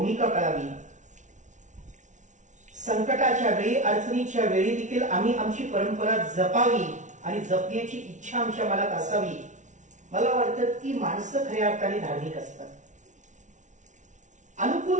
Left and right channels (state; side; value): late; left; 0.36 ms